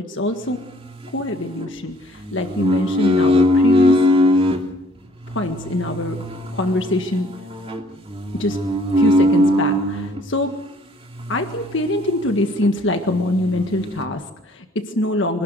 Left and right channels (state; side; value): normal; both; correlation 0.58